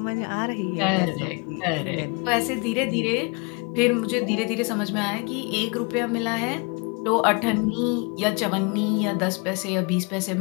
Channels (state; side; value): quieter; right; 31.5 dB